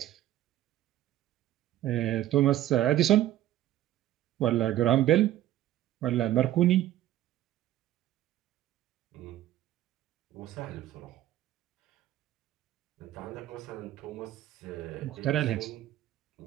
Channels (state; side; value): quieter; left; 13.4 dB